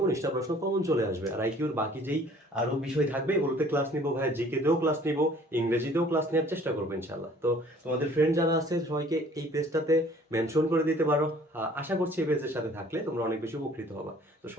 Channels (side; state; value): both; normal; correlation 0.54